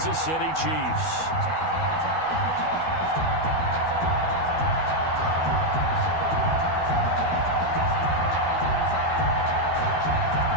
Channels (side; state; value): right; late; 12 ms